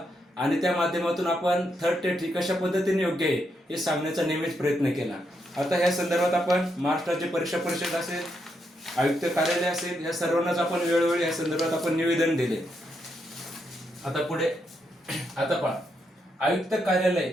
आणि त्या माध्यमातून आपण थर्ड टेट ही कशा पद्धतीने योग्य आहे हे सांगण्याचा नेहमीच प्रयत्न केला. आता ह्या संदर्भात आपण महाराष्ट्र राज्य परीक्षा परिषद असेल, आयुक्त कार्यालय असेल, या सर्वांनाच आपण वेळोवेळी या संदर्भात आपण निवेदन दिले. आता पुढे आता पहा, आयुक्त कार्यालय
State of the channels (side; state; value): both; normal; correlation 0.80